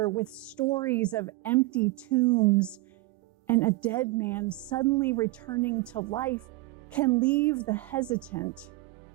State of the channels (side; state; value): left; quieter; 20.2 dB